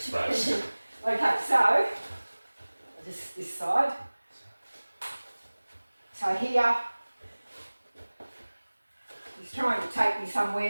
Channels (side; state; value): both; inverted; correlation -1.00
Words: space. Okay, so just this side. So here, he's trying to take me